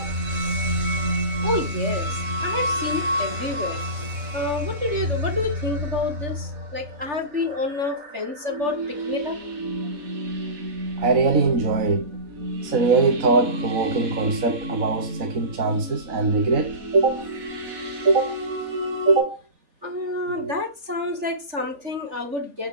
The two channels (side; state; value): left; late; 3.4 ms